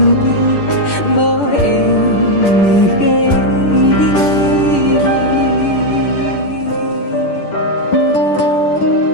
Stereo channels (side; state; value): right; late; 10 ms